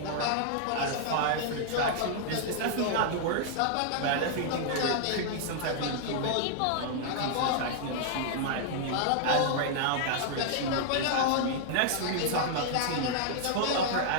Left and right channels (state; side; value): different; both; correlation -0.01